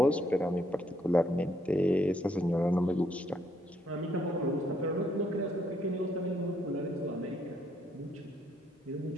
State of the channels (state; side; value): normal; both; correlation 0.71